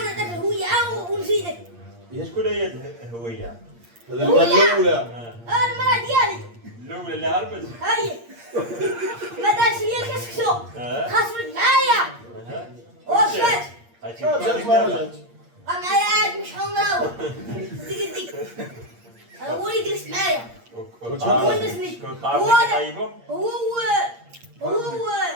الهوية ونزيدك هي شكون هي الهوية؟ الاولى المرة ديالي الأولى اللي هربت؟ هاي ما دارش ليا الكسكسو خاصمت معايا ومشات جات ما رجعت. بقى معايا عاد مش حمراوي ديك ديك هو اللي جلس معايا ونسني شكون هو طعمك هذا طيبهم؟ هو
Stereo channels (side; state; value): left; late; 8.6 ms